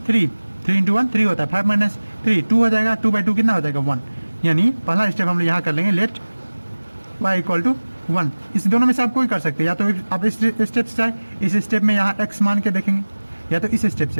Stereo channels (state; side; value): inverted; both; correlation -1.00